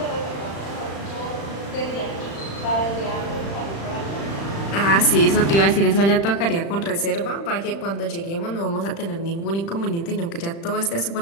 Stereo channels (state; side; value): late; right; 35 ms